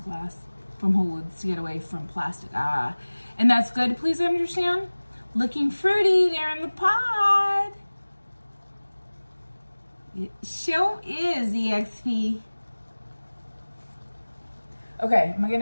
glass from Whole Foods to get away from plastic. Ah, and that's good. Please understand. Looking fruity there in the pod. It sure is, EXP. Okay, am I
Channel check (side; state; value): both; inverted; correlation -1.00